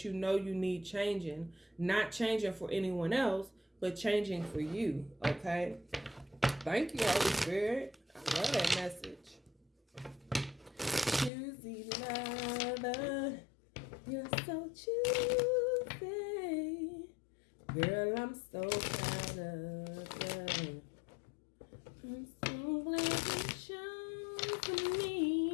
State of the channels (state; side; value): drops out; right; at 11.3 s